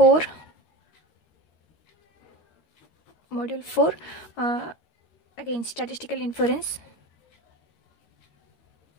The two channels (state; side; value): late; right; 13 ms